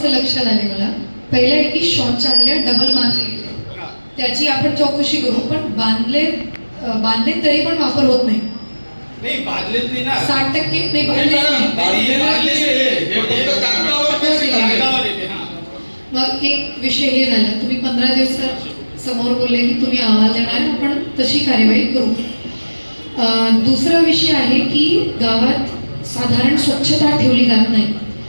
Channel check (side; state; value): both; inverted; correlation -1.00